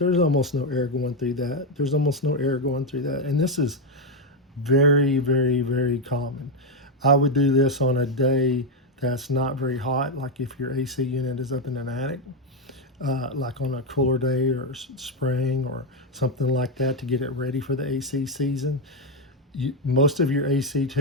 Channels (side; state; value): both; normal; correlation 0.05